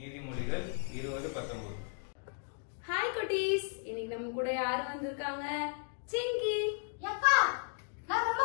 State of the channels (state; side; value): silent; right; 54 dB below the other